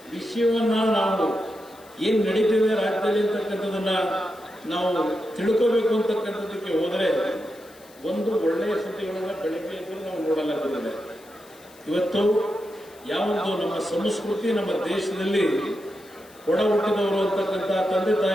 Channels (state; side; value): noise; left; hiss, 25 dB below the sound